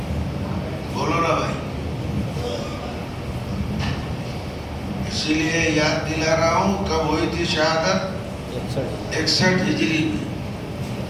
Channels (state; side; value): identical; both; correlation 1.00